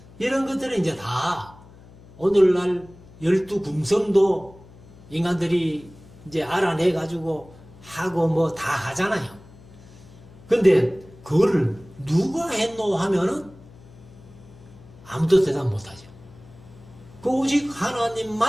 이런 것들은 이제 다 오늘날 12금성도 인간들이 이제 알아내가지고 하고 뭐 다 하잖아요. 근데 그거를 누가 했노 하면은 아무도 대답 못하죠. 그 오직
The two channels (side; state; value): left; noise; hum, 22 dB below the sound